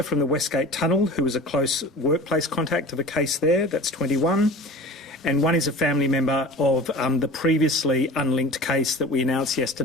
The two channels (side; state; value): both; normal; correlation 0.38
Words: from the Westgate Tunnel who was a close workplace contact of a case there. That's 21. And 1 is a family member of the previously unlinked case that we announced